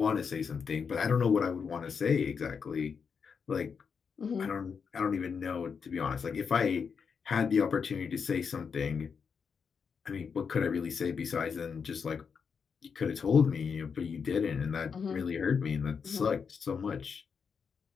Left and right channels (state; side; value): quieter; right; 6.1 dB